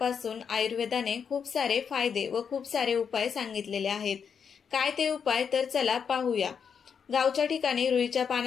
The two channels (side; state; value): right; quieter; 6.8 dB